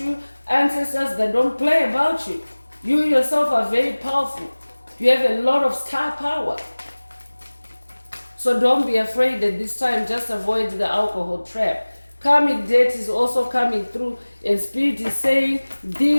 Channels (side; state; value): both; inverted; correlation -1.00